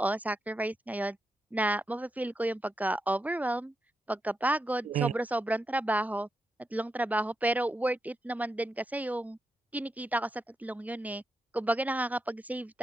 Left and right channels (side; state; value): both; normal; correlation 0.86